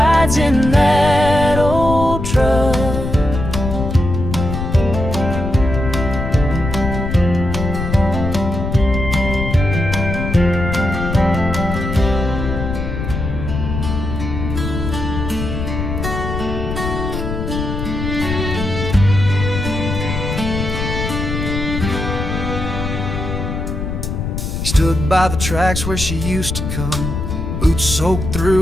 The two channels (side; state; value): left; noise; rumble, 4 dB below the sound